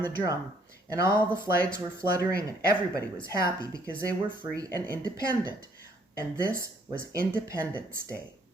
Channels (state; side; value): normal; both; correlation 0.65